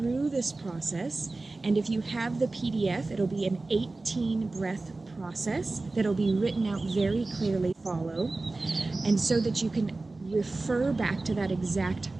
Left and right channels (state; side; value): quieter; left; 3.3 dB